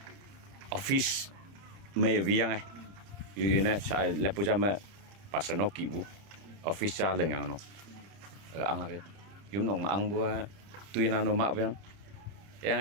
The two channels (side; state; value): left; late; 30 ms